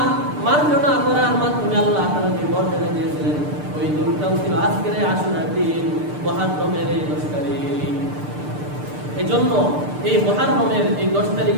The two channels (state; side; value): late; left; 6.7 ms